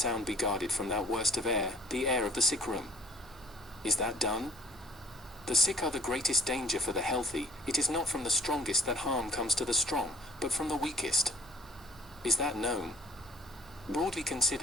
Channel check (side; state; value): right; noise; hum, 24 dB below the sound